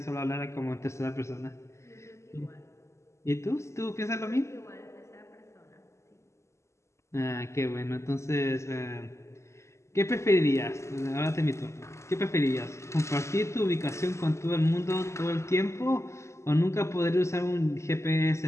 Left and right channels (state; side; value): late; right; 0.13 ms